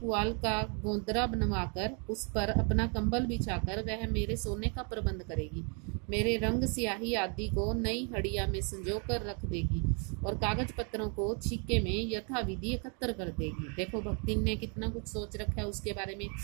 का गोंदरा बनवाकर उस पर अपना कंबल बिछाकर वह मेरे सोने का प्रबंध करेगी। मेरे रंग स्याही आदि को नई हड़िया में संजो कर रख देगी और कागज पत्रों को छीके में यथाविधि एकत्र कर देगी। देखो भक्तिन ने कितना कुछ सोच रखा है उसके बारे में।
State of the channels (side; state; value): left; quieter; 37.4 dB